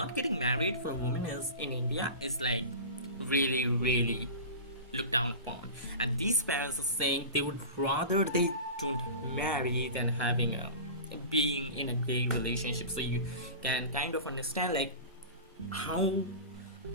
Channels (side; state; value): both; inverted; correlation -0.31